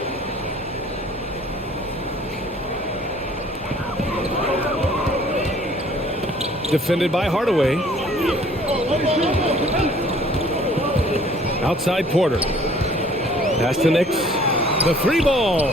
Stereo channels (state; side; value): normal; both; correlation 0.55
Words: Defended by Hardaway. Outside Porter. Pass to Nix. The 3 ball.